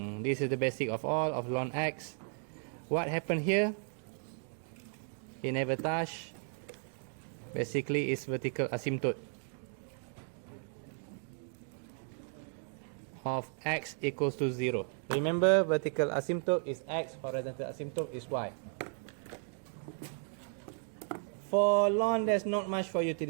this is the basic of all of ln x. What happened here? He never touch. Basically is vertical asymptote of x equals to 0. Remember, vertical asymptote is x, horizontal asymptote is y. For ln, there's not much for you to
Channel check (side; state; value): left; silent; 54 dB below the other